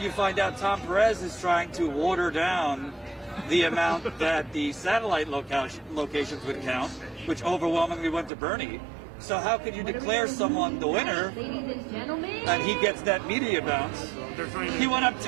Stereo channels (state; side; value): drops out; left; at 8.3 s